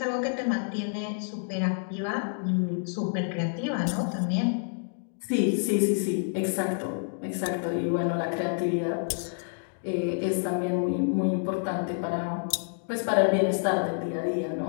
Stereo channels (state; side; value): silent; right; digital silence